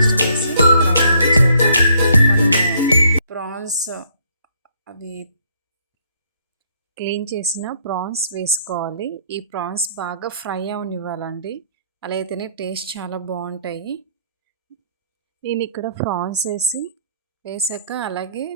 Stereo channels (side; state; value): both; inverted; correlation -0.66